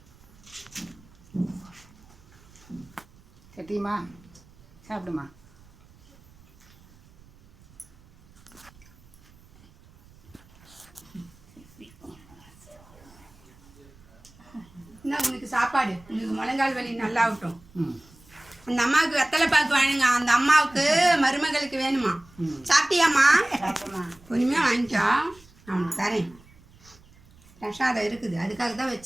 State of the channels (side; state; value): right; noise; rumble, 26 dB below the sound